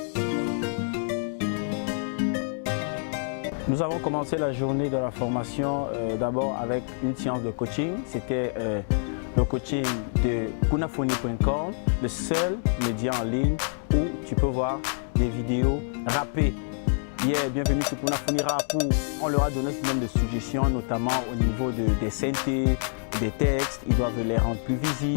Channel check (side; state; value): right; silent; 60 dB below the other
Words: avons commencé la journée de la formation d'abord avec une séance de coaching. C'était le coaching de kunafoni.com, le seul média en ligne où tu peux voir des vidéos rappées. Bienvenue sur Kunafoni Rap où on leur a donné ce nombre de suggestions, notamment au niveau des synthés, des textes. Ils doivent les rendre plus